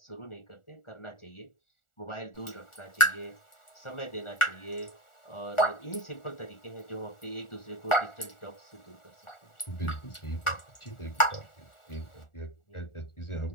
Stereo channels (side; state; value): right; late; 1.4 ms